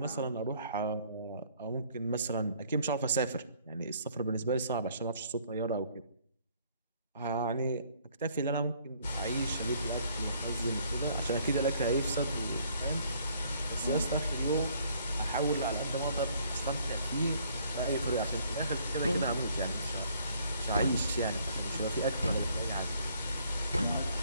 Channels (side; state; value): both; inverted; correlation -0.63